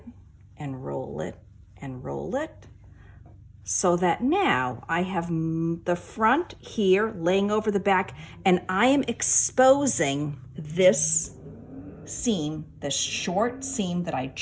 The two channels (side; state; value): both; identical; correlation 1.00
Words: and roll it and roll it, so that now I have the front here laying over the back, and I am exposing this seam, this short seam that I